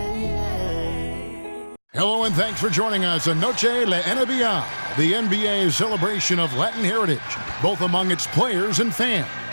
Hello and thanks for joining us on Noche La NBA, the NBA celebration of Latin heritage, both among its players and fans.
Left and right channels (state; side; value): inverted; both; correlation -1.00